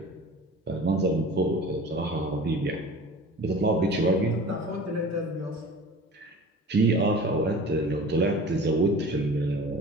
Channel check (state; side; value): normal; both; correlation 0.40